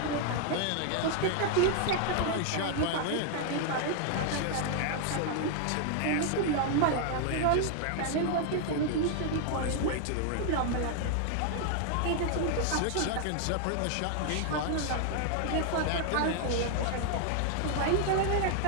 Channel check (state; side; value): different; both; correlation 0.00